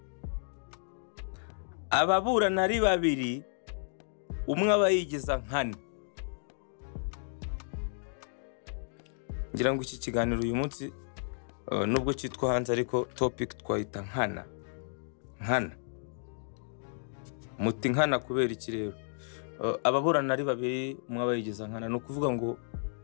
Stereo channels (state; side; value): silent; right; digital silence